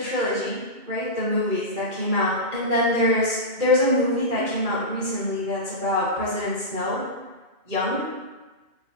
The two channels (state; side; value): late; left; 2.4 ms